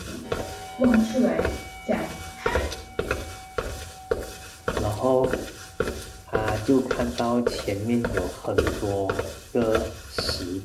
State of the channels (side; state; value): both; identical; correlation 1.00